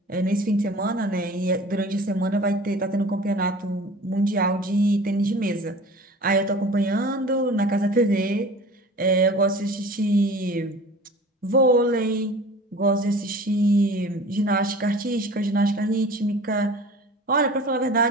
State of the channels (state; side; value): normal; both; correlation 0.42